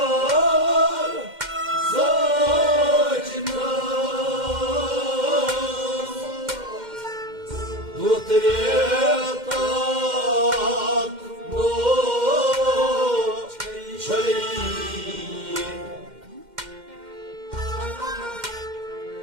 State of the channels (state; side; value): late; left; 2.1 ms